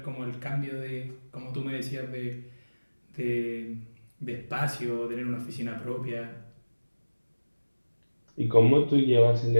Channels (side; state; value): both; inverted; correlation -1.00